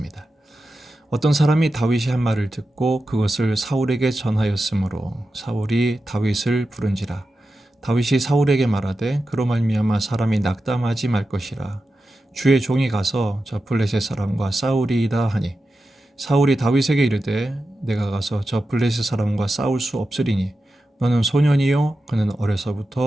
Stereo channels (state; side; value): normal; both; correlation 0.91